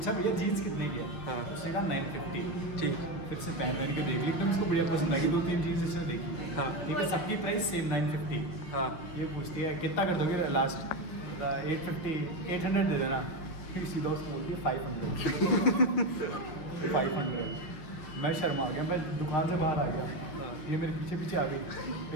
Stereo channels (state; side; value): late; right; 6.2 ms